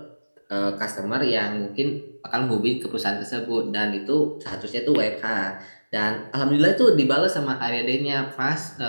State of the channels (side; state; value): both; inverted; correlation -1.00